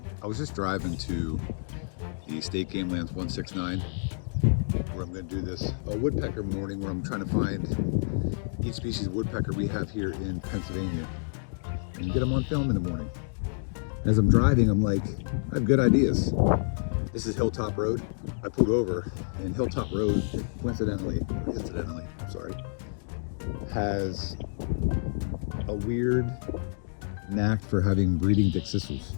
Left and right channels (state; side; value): silent; right; digital silence